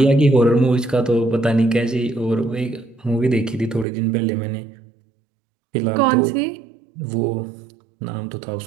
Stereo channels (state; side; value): drops out; left; at 3.9 s